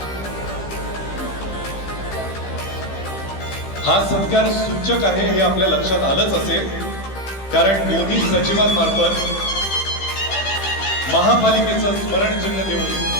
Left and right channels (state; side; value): late; right; 15 ms